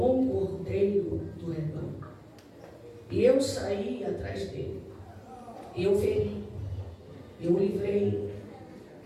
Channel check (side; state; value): both; identical; correlation 1.00